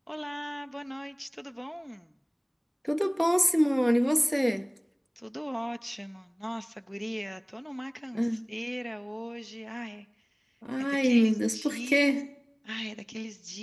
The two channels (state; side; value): identical; both; correlation 1.00